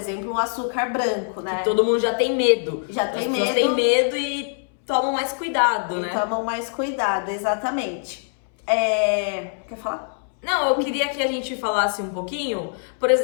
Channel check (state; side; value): silent; right; 63 dB below the other